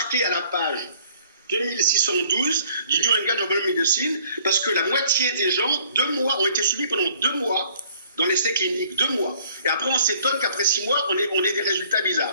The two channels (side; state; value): both; inverted; correlation -0.58